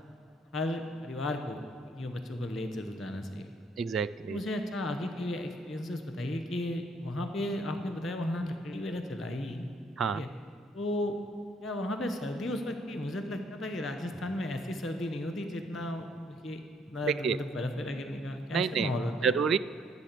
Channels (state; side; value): normal; both; correlation 0.67